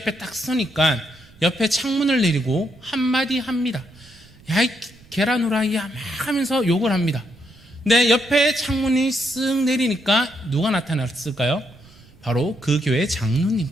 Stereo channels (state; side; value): noise; right; rumble, 26 dB below the sound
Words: 딱 서니까 옆에 창문을 내리고 한마디 합니다. 야, 이 계란 후라이야, 막 하면서 욕을 합니다. 근데 옆에 창문이 쓱 내리니까 누가 나타났을까요? 바로 그 교회